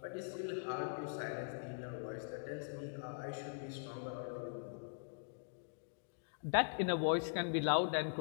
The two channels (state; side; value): silent; right; digital silence